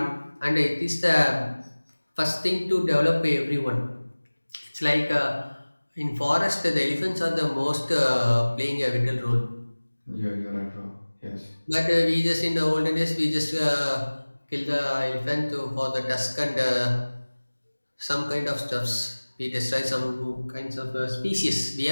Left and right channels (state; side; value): inverted; both; correlation -1.00